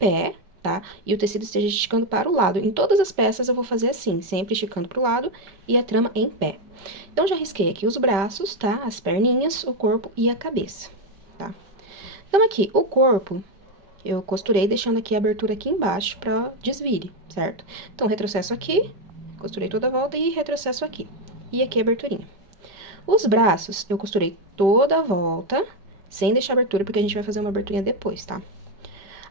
tá? E o tecido esteja esticando para o lado. Em todas as peças eu vou fazer assim, sempre esticando para o lado e a trama em pé. Então, já risquei aqui os braços, tá? As perninhas, o corpo e a cabeça, tá? Então, aqui, o corpo... eu costurei deixando aqui a abertura aqui embaixo pra desvire, certo? Então, retrocesso aqui, costurei toda a volta e retrocesso aqui. E aqui a aberturinha. Os braços, eu costurei toda a volta, sem deixar abertura, porque a gente vai fazer uma aberturinha depois, tá?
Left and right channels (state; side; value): late; left; 5.1 ms